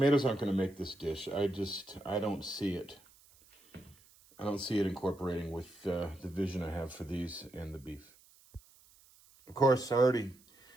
aren't going to make this dish. I don't see it. I don't see it incorporating with the vision I have for these and the beef. Of course, I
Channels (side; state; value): right; noise; hiss, 27 dB below the sound